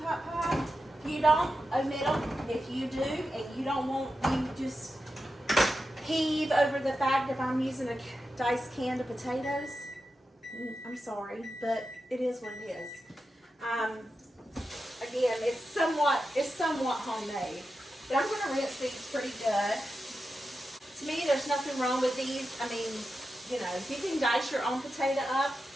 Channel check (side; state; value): both; normal; correlation 0.90